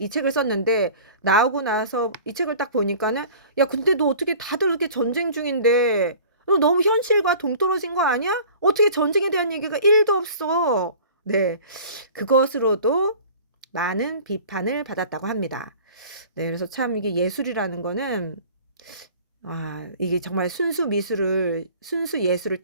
책을 썼는데 나오고 나서 이 책을 딱 보니까는 야 근데 너 어떻게 다들 이렇게 전쟁 중인데 너 너무 현실과 동떨어진 거 아니야? 어떻게 전쟁에 대한 얘기가 1도 없어. 네, 그것으로도 많은 비판을 받았다고 합니다. 네, 그래서 참 이게 예술이라는 거는 이게 정말 순수 예술을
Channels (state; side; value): inverted; both; correlation -0.45